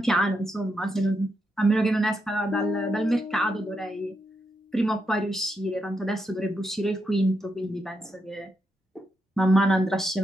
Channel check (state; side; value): normal; both; correlation 0.82